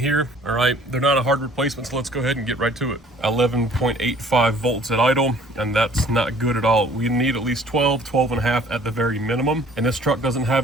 all right? They're not a hard replacement, so let's go ahead and get right to it. 11.85 volts at idle, and that's not good at all. We need at least 12 and a half at the very minimum. And this truck doesn't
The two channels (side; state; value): both; normal; correlation 0.54